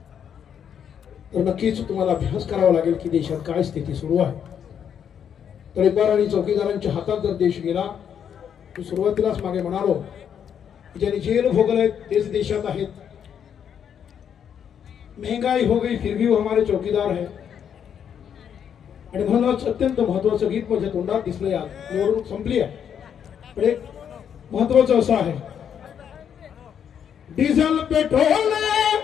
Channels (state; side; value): quieter; right; 8.4 dB